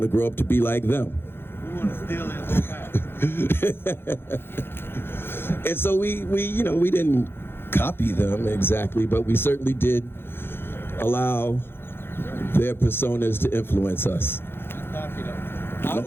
to grow up to be like them. We want to steal it. And so we didn't copy them exactly, but we certainly did allow their personas to influence us. I was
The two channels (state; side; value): late; right; 0.11 ms